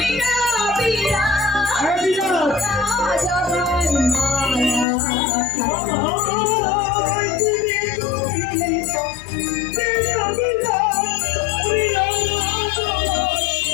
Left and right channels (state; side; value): drops out; right; at 4.9 s